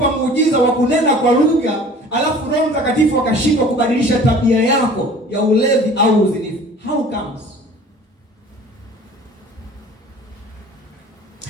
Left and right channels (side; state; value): both; normal; correlation 0.46